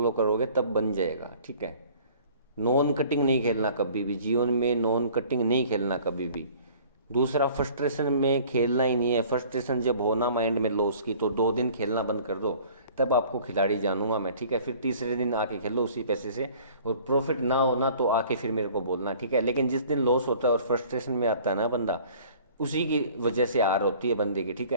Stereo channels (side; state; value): both; inverted; correlation -0.51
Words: करोगे तब बन जाएगा, ठीक है। नॉन कटिंग नहीं खेलना कभी भी जीवन में, नॉन कटिंग नहीं खेलना कभी भी। दूसरा, फ्रस्ट्रेशन में खेलना ही नहीं है। फ्रस्ट्रेशन जब होना माइंड में लॉस की, तो 2 दिन खेलना बंद कर दो, तब आपको खिलाड़ी जानूंगा मैं, ठीक है। फिर तीसरे दिन आके खेलो उसी पैसे से, और प्रॉफिट ना होना तो आके फिर मेरे को बोलना, ठीक है। लेकिन जिस दिन लॉस होता है और फ्रस्ट्रेशन में आता है ना बंदा, उसी की वजह से हार होती है बंदे की, ठीक